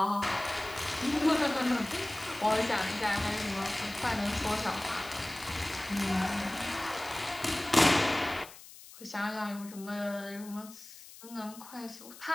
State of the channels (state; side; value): noise; left; hiss, 18 dB below the sound